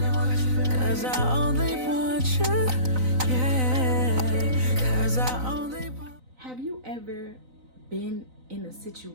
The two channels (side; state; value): left; late; 3.9 ms